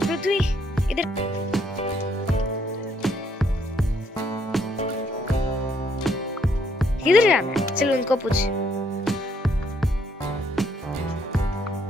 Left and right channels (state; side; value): normal; both; correlation 0.70